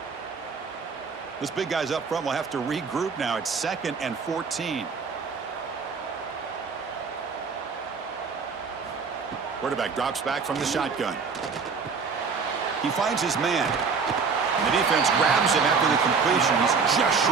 This big guy's up front will have to regroup now. It's 2nd and 14. Quarterback drops back from the shotgun. He finds his man. And the defense grabs him after the completion. He's just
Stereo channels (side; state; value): left; quieter; 5.3 dB